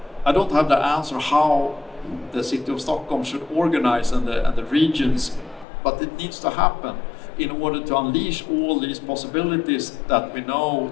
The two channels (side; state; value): right; drops out; at 5.7 s